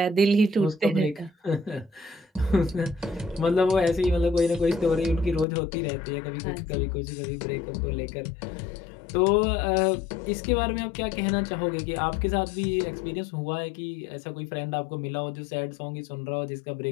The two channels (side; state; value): right; drops out; at 5.5 s